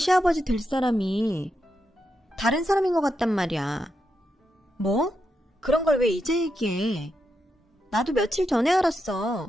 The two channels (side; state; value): both; normal; correlation 0.85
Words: 될 사람이 다른 사람인 것 같단 말이야. 뭐? 그런 걸 왜 이제 얘기해? 나도 며칠 전에